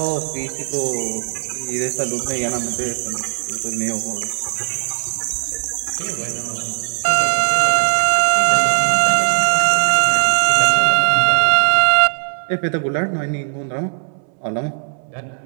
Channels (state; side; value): silent; left; 66 dB below the other